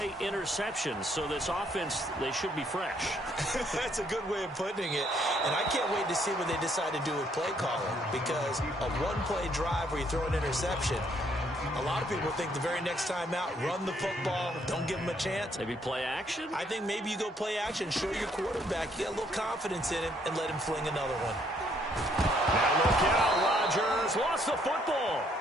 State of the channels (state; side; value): normal; both; correlation 0.68